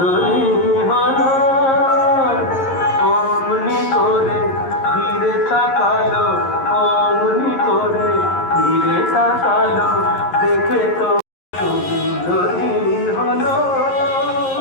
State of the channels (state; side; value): late; right; 11 ms